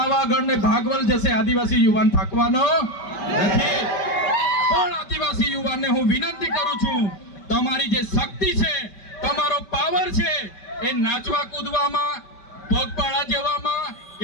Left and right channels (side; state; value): right; late; 5.2 ms